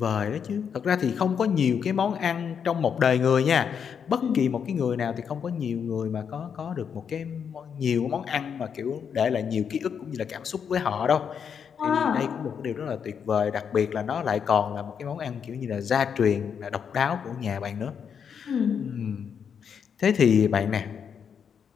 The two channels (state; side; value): quieter; right; 7.2 dB